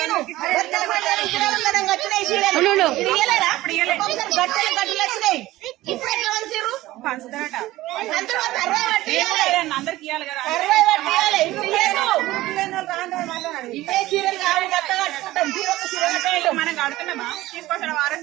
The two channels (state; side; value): quieter; left; 17.0 dB